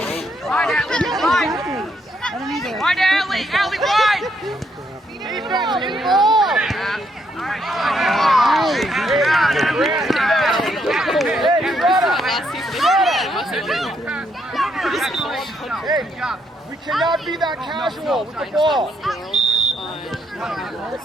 Wide, Allie, wide! Defense, in ball. Hey, we cannot be that casual with the ball.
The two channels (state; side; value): normal; both; correlation 0.75